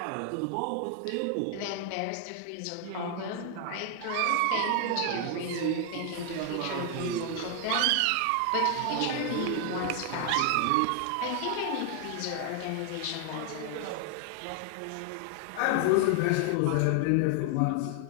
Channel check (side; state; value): both; different; correlation 0.00